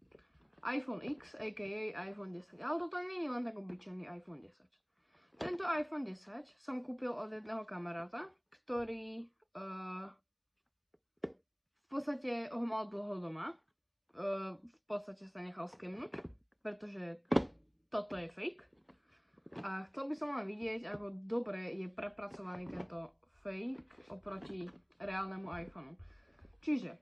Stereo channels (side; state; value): both; identical; correlation 1.00